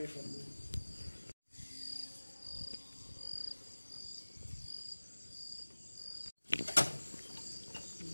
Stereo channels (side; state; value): both; inverted; correlation -1.00